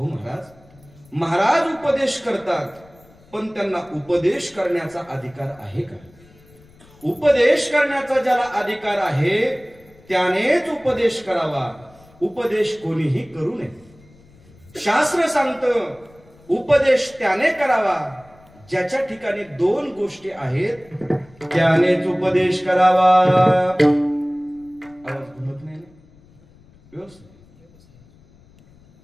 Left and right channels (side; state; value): left; noise; rumble, 27 dB below the sound